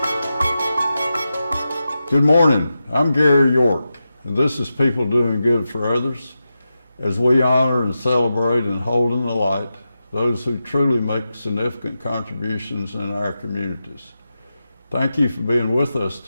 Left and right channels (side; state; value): both; inverted; correlation -0.91